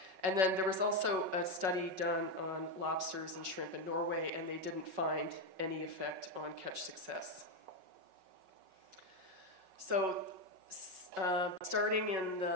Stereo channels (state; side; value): late; left; 5.4 ms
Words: And then there was also a study done on lobsters and shrimp in Norway, and they didn't find any effect on catch success. So starting in